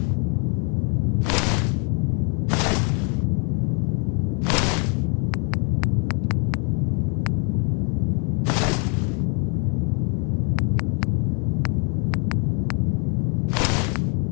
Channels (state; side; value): quieter; right; 35.3 dB